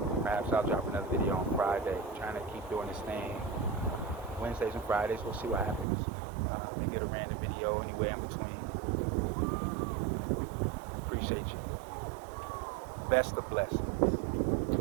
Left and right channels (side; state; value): left; drops out; at 5.9 s